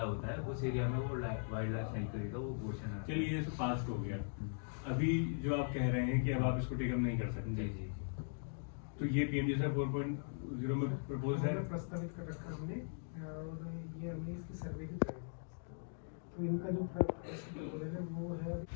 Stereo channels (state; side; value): silent; right; digital silence